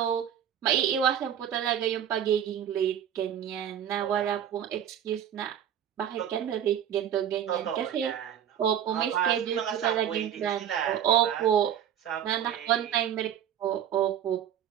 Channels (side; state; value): left; quieter; 9.7 dB